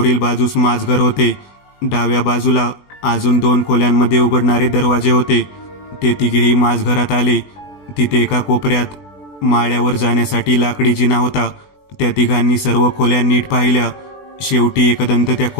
बाजूस माझघर होते. डाव्या बाजूला अजून 2 खोल्यांमध्ये उघडणारे दरवाजे होते. ते तिघेही माझघरात आले. तिथे एका कोपऱ्यात माळ्यावर जाण्यासाठी लाकडी जिना होता. त्या तिघांनी सर्व खोल्या नीट पाहिल्या. शेवटी एकदंत त्या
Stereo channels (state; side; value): late; right; 21 ms